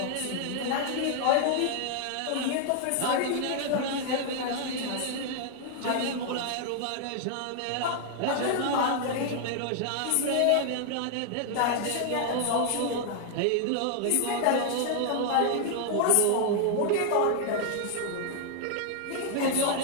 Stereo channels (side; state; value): both; different; correlation 0.00